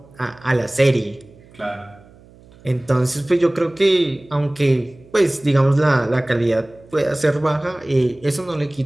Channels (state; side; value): noise; right; hum, 25 dB below the sound